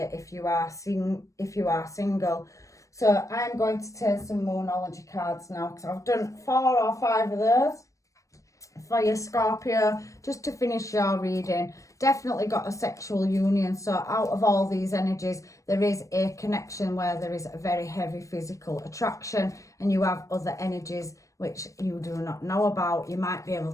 if you are single. So I'm going to take some Moonology cards now, because I've done 4 or 5 of those for your Scorpio, just to finish your reading. Definitely got a sexual union. So out of all these energies, there is a connection where there is a very heavy physical attraction, and you have other energies which you do not know about. You might be able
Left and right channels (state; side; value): late; right; 0.16 ms